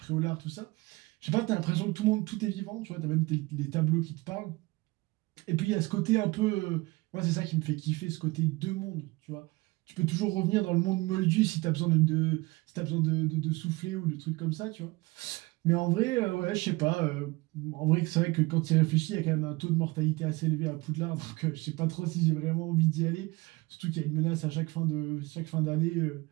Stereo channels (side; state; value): left; quieter; 22.9 dB